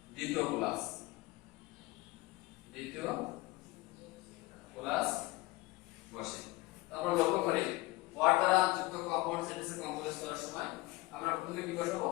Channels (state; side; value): quieter; right; 20.9 dB